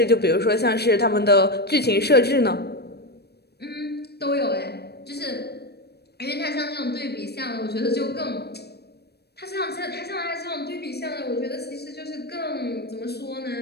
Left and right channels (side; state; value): right; late; 0.47 ms